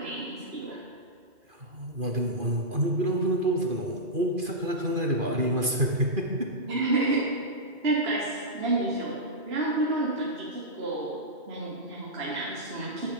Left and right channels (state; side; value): late; left; 2.5 ms